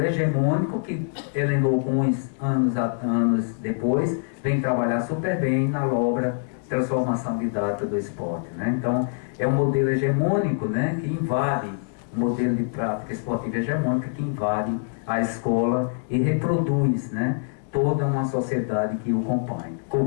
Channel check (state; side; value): silent; right; digital silence